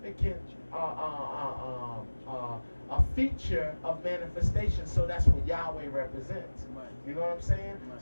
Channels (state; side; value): inverted; both; correlation -1.00